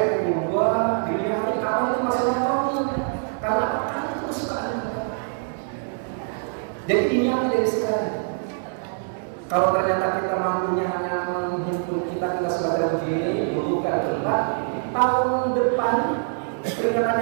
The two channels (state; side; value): silent; left; digital silence